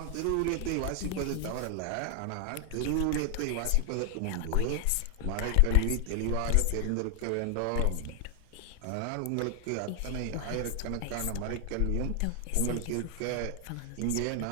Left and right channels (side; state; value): both; different; correlation 0.00